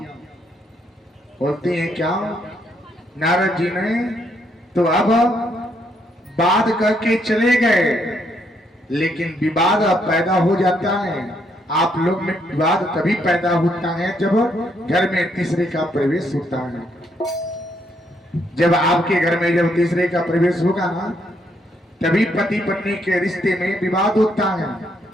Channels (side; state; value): both; normal; correlation 0.73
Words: बोलती हैं क्या नारद जी ने तो अब बात करके चले गए, लेकिन विवाद पैदा हो जाता है। आप लोग में विवाद तभी पैदा होता है जब घर में तीसरे का प्रवेश होता है। जब आपके घर में जब तीसरे का प्रवेश होगा ना, तभी पति पत्नी के रिश्ते में विवाद होता है,